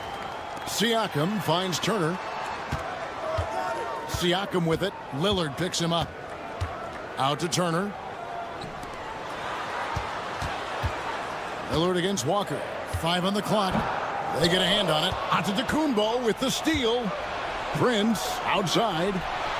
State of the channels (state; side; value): identical; both; correlation 1.00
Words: Siakam finds Turner. Siakam with it. Lillard picks him up. Out to Turner. Lillard against Walker. 5 on the clock. They get a hand on it. Antetokounmpo with the steal. Prince outside.